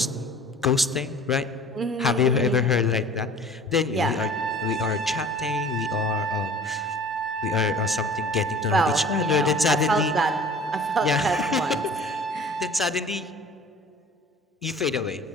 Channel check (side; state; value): both; normal; correlation 0.46